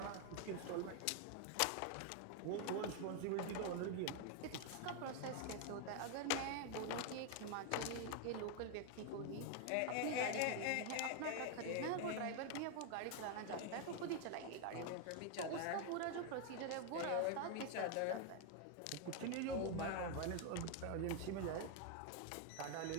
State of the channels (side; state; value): both; different; correlation 0.01